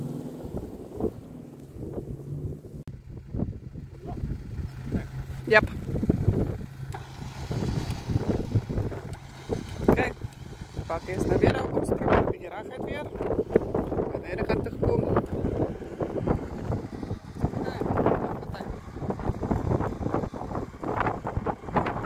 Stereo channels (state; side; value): identical; both; correlation 1.00